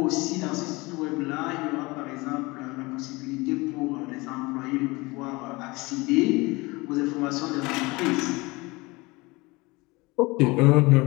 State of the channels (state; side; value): quieter; right; 23.6 dB